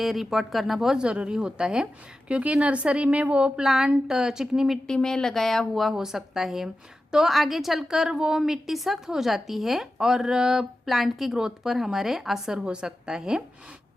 रिपोर्ट करना बहुत ज़रूरी होता है, क्योंकि नर्सरी में वो प्लांट चिकनी मिट्टी में लगाया हुआ हो सकता है, तो आगे चलकर वो मिट्टी सख्त हो जाती है और प्लांट की ग्रोथ पर हमारे असर हो सकता है।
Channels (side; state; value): both; normal; correlation 0.93